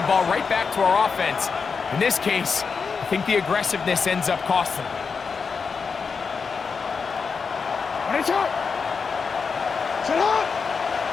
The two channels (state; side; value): quieter; right; 5.4 dB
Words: ball right back to our offense. In this case, I think the aggressiveness ends up costing them.